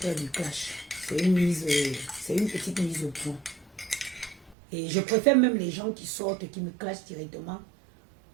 du clash. C'est une petite mise au point. Et je préfère même les gens qui sortent, qui me clashent directement,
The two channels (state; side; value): drops out; left; at 4.5 s